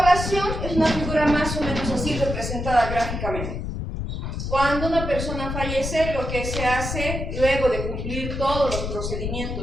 es una figura más o menos así representada gráficamente. Cuando una persona fallece, lo que se hace luego de cumplir todos los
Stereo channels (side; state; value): left; noise; rumble, 4 dB below the sound